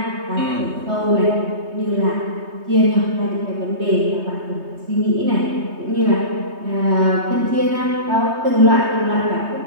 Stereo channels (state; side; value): late; left; 3.2 ms